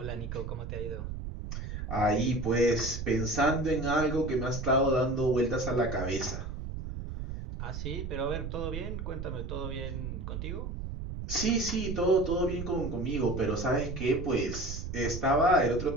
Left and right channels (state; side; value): noise; right; rumble, 6 dB below the sound